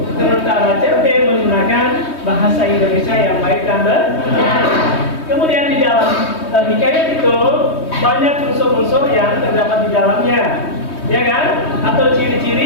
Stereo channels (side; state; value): right; late; 3.2 ms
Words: sementara cerpen menggunakan bahasa Indonesia yang baik dan benar. Kemudian di dalam hikayat itu banyak unsur-unsur yang terdapat di dalamnya, ya kan? Atau